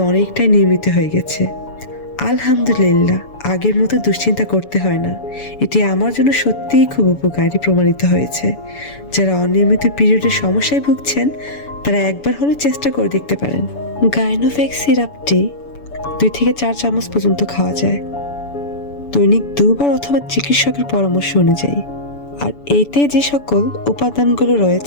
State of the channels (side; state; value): right; late; 7.0 ms